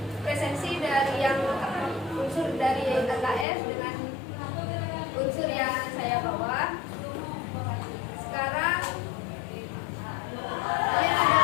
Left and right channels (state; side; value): drops out; right; at 3.5 s